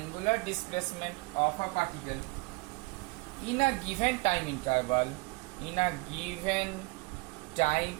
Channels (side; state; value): left; quieter; 26.2 dB